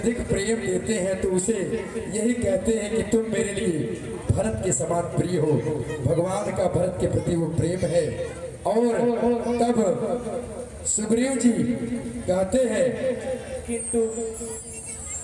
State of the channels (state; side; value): identical; both; correlation 1.00